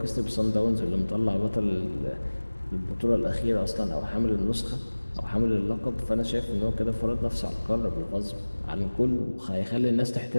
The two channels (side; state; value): both; inverted; correlation -1.00